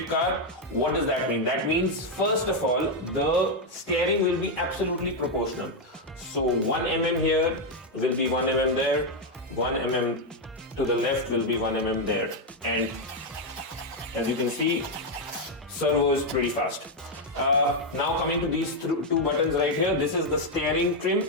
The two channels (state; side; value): normal; both; correlation 0.02